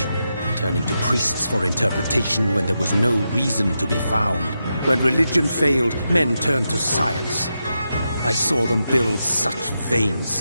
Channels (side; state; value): both; inverted; correlation -0.87